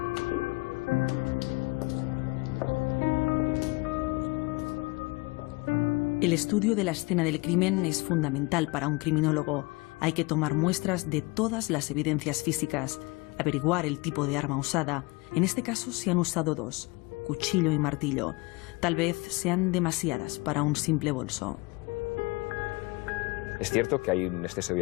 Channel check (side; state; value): right; quieter; 25.5 dB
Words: El estudio de la escena del crimen es fundamental para un criminólogo. Hay que tomar muestras de todas las evidencias físicas, averiguar el tipo de arma usada. En este caso se han usado dos, cuchillo y martillo. Tal vez sean demasiadas para un simple bolso. Es cierto que hay un exceso de